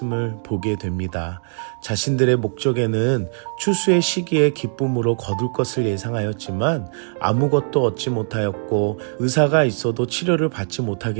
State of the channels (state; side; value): silent; left; digital silence